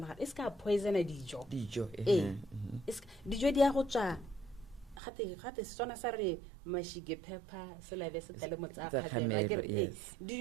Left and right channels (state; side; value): drops out; left; at 5.0 s